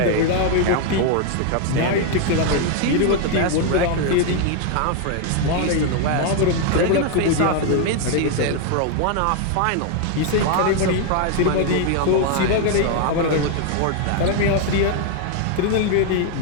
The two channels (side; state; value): both; different; correlation 0.00